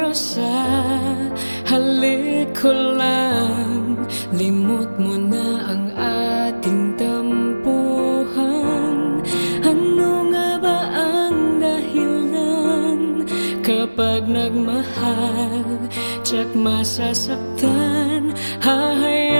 sa halik ko lang limot mo na ang ating tampuhan. Ano nga ba ang dahilan kapag nagmahal tsak masasaktan?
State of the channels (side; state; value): both; inverted; correlation -1.00